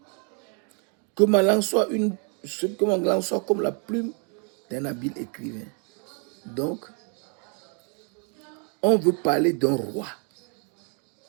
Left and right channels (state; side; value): quieter; left; 39.0 dB